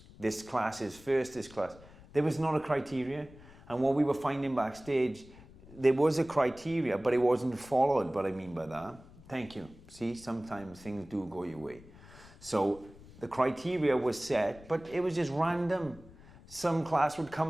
This class is first, this class. There was not a criteria. And what we were finding backstage, there was a criteria, but it wasn't followed. What I mean by that, thank you. See, sometimes things do go your way. So the criteria was set, but it was just random. Some class would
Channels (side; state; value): left; noise; rumble, 21 dB below the sound